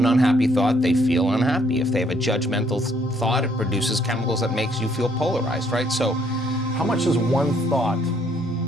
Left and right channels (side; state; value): both; normal; correlation 0.67